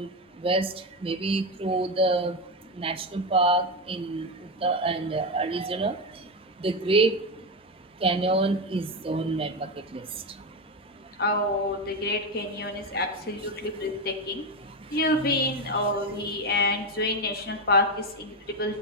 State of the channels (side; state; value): both; normal; correlation 0.12